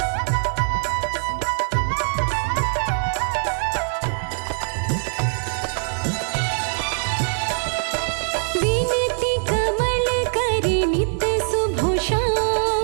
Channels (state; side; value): silent; left; 64 dB below the other